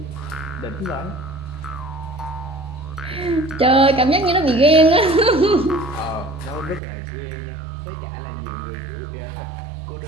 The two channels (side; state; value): left; drops out; at 6.8 s